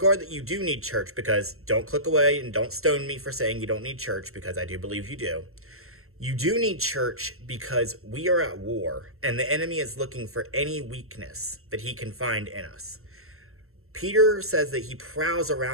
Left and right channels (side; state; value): left; late; 0.62 ms